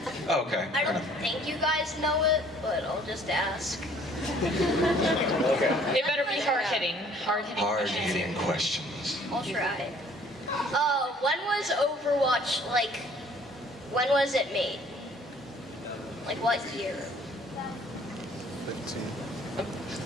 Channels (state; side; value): normal; both; correlation 0.56